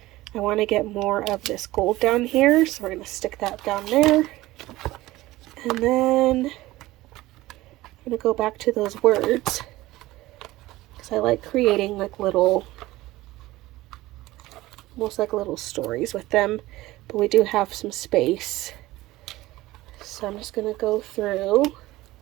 I want to get more of this gold down here, so we're going to stick that down there. And then I'm going to go back to those words, because I like creating like little, almost like little stories with them, but we do have some space. So I'm just going to go through,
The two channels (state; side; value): quieter; left; 17.9 dB